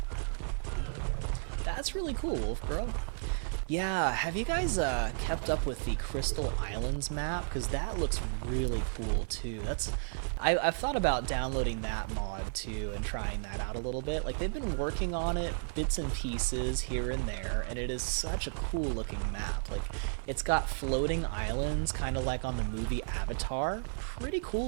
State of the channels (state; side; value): silent; left; 56 dB below the other